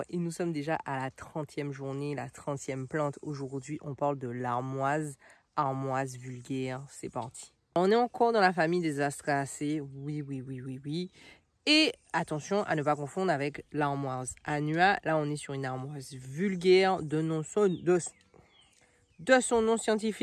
et nous sommes déjà à la 30e journée, la 30e plante. Aujourd'hui, on parle de l'armoise, armoise vulgaire. C'est parti. On est encore dans la famille des Astraceae. Oui. Et attention à ne pas confondre avec l'armoise annua. Là, on est sur une armoise vulgaire de son nom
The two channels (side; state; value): both; identical; correlation 1.00